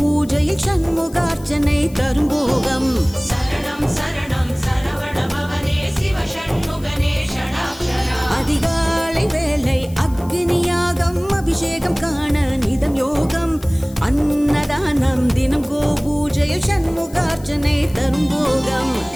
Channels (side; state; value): left; noise; hiss, 22 dB below the sound